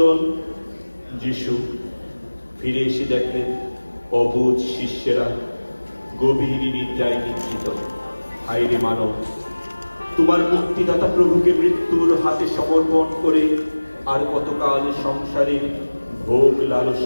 যিশু ফিরে এসে দেখলেন অবুঝ শিষ্যেরা গভীর নিদ্রায় নিদ্রিত। হায়রে মানব, তোমার মুক্তিদাতা প্রভুকে মৃত্যুর হাতে সমর্পণ করে আর কতকাল সংসারের ভোগ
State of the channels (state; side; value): inverted; both; correlation -1.00